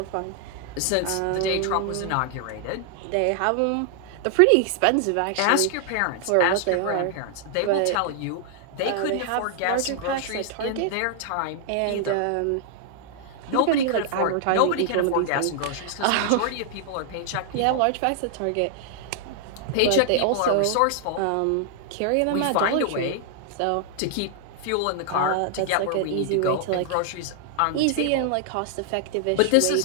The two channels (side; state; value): both; different; correlation 0.00